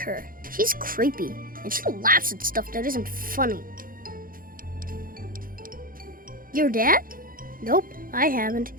She's creepy, and she laughs at stuff that isn't funny. Your dad? Nope, I haven't.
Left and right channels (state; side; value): late; left; 0.41 ms